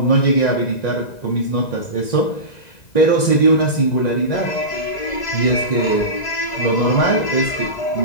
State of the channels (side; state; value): right; late; 1.9 ms